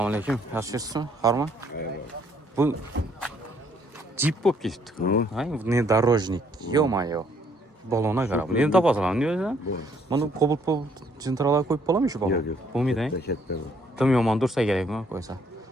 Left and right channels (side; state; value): both; normal; correlation 0.66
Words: alaykum. Yaxshisiz? Harmi? Bu Jeep bo'lib ketibdi. Hay, внедорожник. Ё-моё. Balona qarab. Endi topasan, deysan? Mana Cobalt jentralar qo'yib bo'ladimi shu balon? Bo'lmaydi, ha? Tim yomon dursa kerakmi qo'ysa.